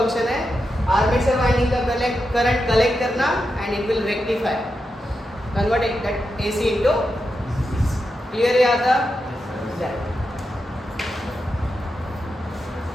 है. Armature winding का current collect करना and it will rectify, convert that AC into. Clear है आता?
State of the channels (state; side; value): normal; both; correlation 0.87